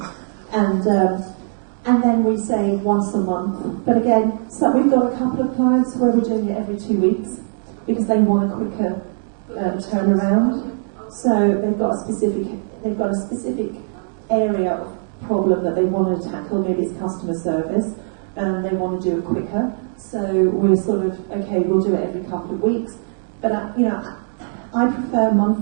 And then we say once a month. But again, so we've got a couple of clients where we're doing it every 2 weeks because they want a quicker turnaround. So they've got a specific area of problem that they want to tackle. Maybe it's customer service, and they want to do it quicker. So we're sort of okay. We'll do it every couple of weeks. But I prefer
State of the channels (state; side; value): silent; left; digital silence